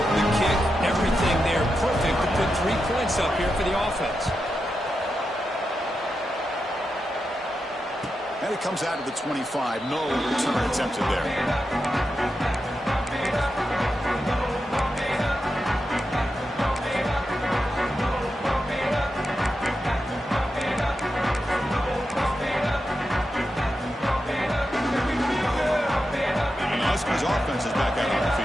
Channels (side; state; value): both; normal; correlation 0.88